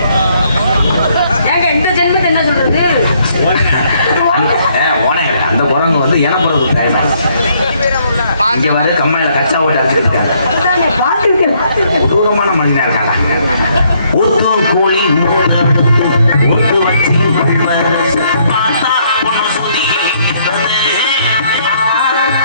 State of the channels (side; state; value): both; inverted; correlation -0.69